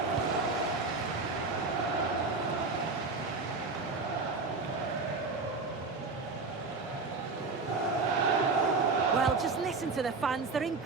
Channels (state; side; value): quieter; left; 4.0 dB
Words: Well, just listen to the fans. They're in